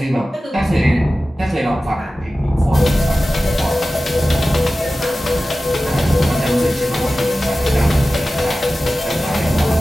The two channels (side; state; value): both; normal; correlation 0.95